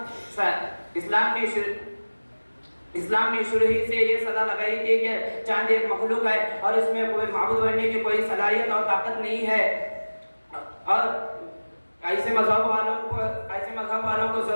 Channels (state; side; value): inverted; both; correlation -1.00